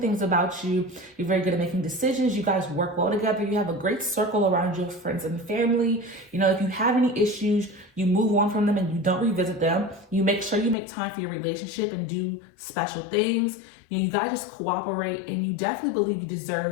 about you. You're very good at making decisions. You guys work well together. You have a great circle around you of friends and family. If you have any issues, you move on from them and you don't revisit them. You make sure you make time for your relationship and do special things. You guys just cooperate, and you definitely believe you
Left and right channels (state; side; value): drops out; right; at 10.8 s